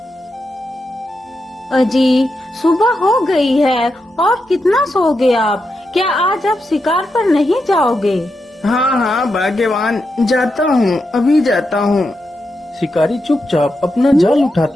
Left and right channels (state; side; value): normal; both; correlation 0.86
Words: अजी, सुबह हो गई है और कितना सोओगे आप? क्या आज आप शिकार पर नहीं जाओगे? हाँ हाँ भाग्यवान, जाता हूँ, अभी जाता हूँ। शिकारी चुपचाप अपना जाल